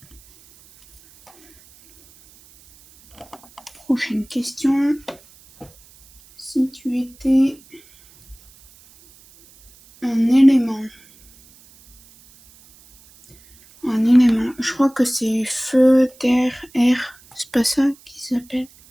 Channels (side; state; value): right; noise; hiss, 27 dB below the sound